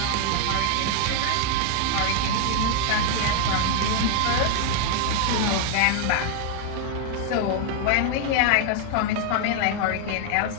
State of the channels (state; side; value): different; both; correlation 0.00